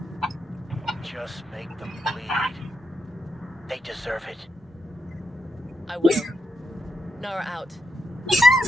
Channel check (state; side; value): normal; both; correlation 0.83